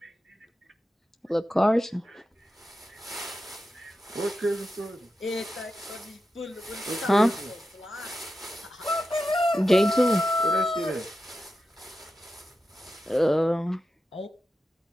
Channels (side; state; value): both; normal; correlation 0.90